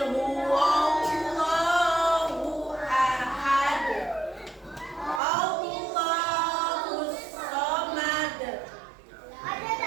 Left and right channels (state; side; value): drops out; left; at 5.2 s